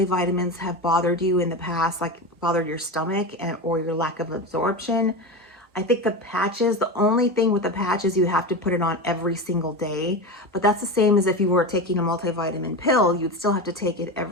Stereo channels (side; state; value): both; normal; correlation 0.22